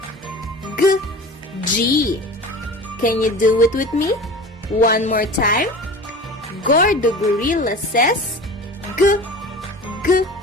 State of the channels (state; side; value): normal; both; correlation 0.37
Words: G, G. Can you do it with me? One more time. Gordo Gorilla says G, G,